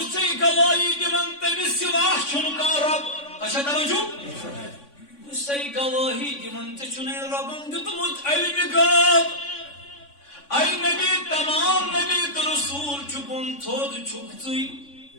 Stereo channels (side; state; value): right; late; 3.5 ms